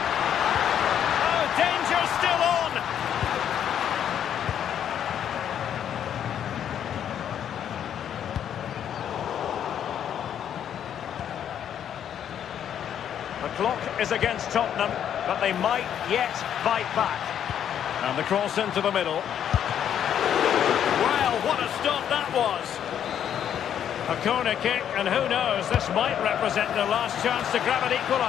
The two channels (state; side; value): quieter; right; 9.4 dB